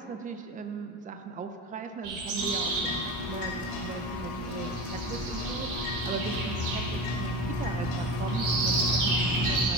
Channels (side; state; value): both; normal; correlation 0.29